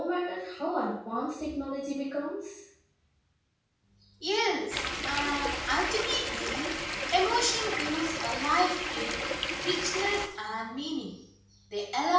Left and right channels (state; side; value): identical; both; correlation 1.00